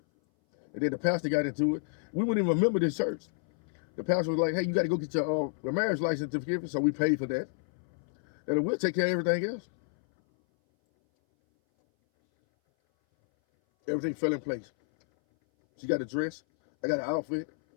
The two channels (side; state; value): right; silent; 58 dB below the other